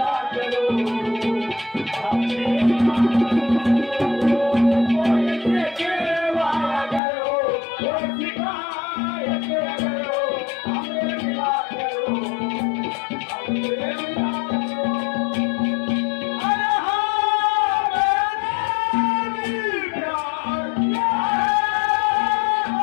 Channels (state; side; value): drops out; right; at 7.0 s